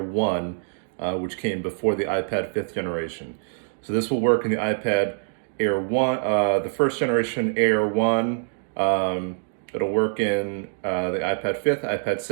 which came before the iPad 5th generation. So this will work in the iPad Air 1, the first generation Air 1. It'll work in the iPad 5th, iPad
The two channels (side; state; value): left; silent; digital silence